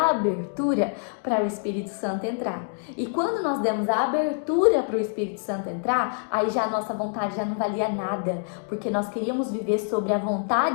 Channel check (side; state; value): right; silent; digital silence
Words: abertura para o Espírito Santo entrar. E quando nós demos a abertura para o Espírito Santo entrar, aí já a nossa vontade já não valia nada, porque nós queríamos viver sobre a